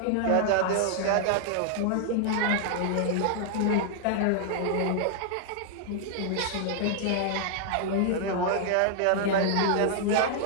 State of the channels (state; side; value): different; both; correlation 0.00